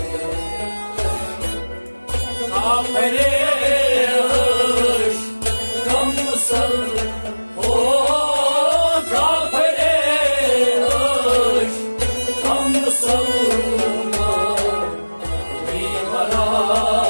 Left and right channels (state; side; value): inverted; both; correlation -1.00